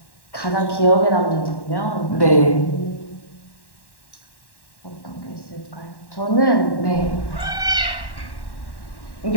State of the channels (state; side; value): late; right; 1.1 ms